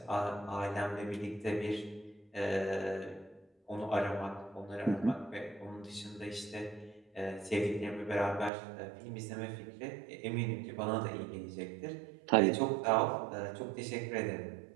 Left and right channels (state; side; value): drops out; left; at 8.5 s